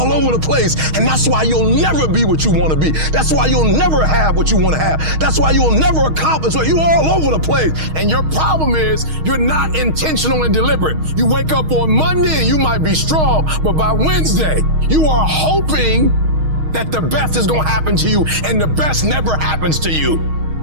over the place. And that's why you'll never be what you want to be. That's why you'll never have what you want to have. That's why you'll never accomplish what you all over the place. And your problem is you're not intentional and deliberate. You wake up on Monday and you might be strong, but by Wednesday, you are hoping that the best is going to happen to you, and the best never happens to you.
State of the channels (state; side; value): late; left; 6.4 ms